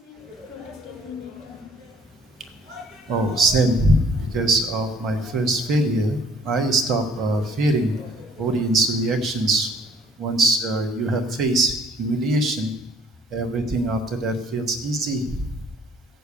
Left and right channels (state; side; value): normal; both; correlation 0.59